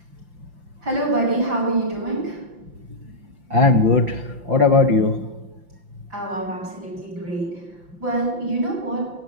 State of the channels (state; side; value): late; left; 5.8 ms